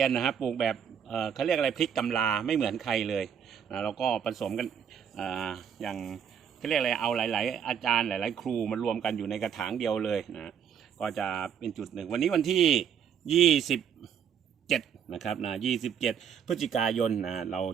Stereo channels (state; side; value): quieter; left; 8.1 dB